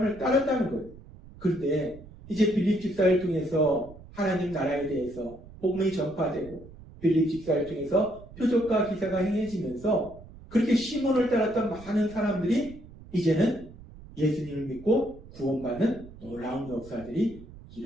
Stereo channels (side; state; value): right; noise; rumble, 19 dB below the sound